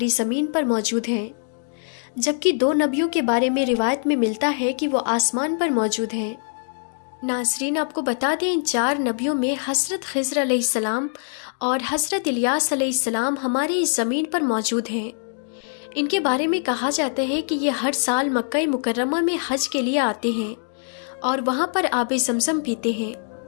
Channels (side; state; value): right; silent; digital silence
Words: زمین پر موجود ہیں، جبکہ 2 نبیوں کے بارے میں روایت میں ملتا ہے کہ وہ آسمان پر موجود ہیں۔ ناظرین، آپ کو بتا دیں، ان 4 نبیوں میں حضرت خضر علیہ السلام اور حضرت الیاس علیہ السلام ہماری اس زمین پر موجود ہیں۔ ان کے بارے میں کہا جاتا ہے کہ یہ ہر سال مکہ مکرمہ میں حج کے لیے آتے ہیں اور وہاں پر آب زمزم پیتے ہیں،